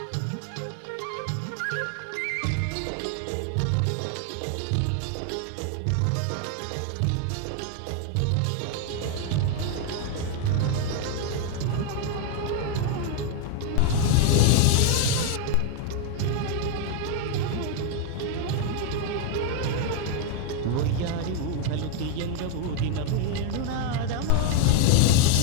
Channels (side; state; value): both; different; correlation 0.01